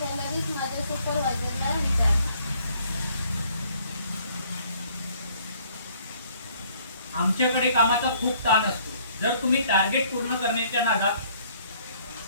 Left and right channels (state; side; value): inverted; both; correlation -0.61